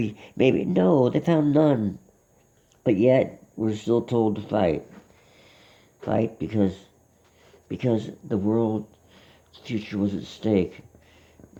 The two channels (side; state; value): both; identical; correlation 1.00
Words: no, they found none. But yet we're still told to fight because the world's future was at stake.